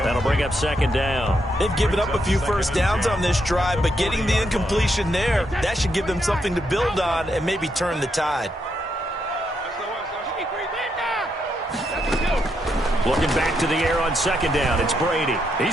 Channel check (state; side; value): normal; both; correlation 0.79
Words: That'll bring up 2nd down. They've given up a few 1st downs on this drive, but getting the incompletion there, that should give them something to build on and maybe turn the tide. Looking back to the air on second down. It's Brady.